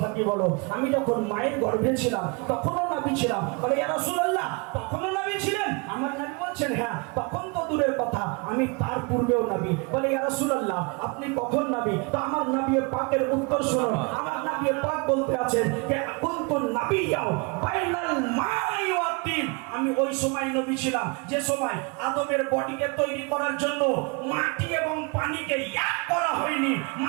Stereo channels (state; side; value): quieter; left; 30.8 dB